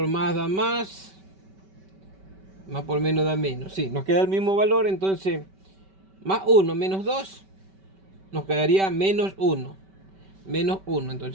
más da más por menos da menos, sí, nos queda el mismo valor. Entonces más 1 menos 2 nos quedaría menos 1. Menos 1,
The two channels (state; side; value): late; left; 5.2 ms